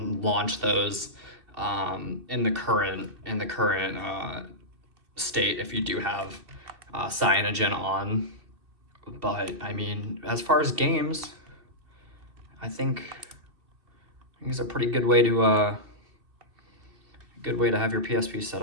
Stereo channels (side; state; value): left; late; 2.6 ms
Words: launch those in the current state if you do have Cyanogen on. But I mean, as far as games, I think it's a pretty good way to have your PSP set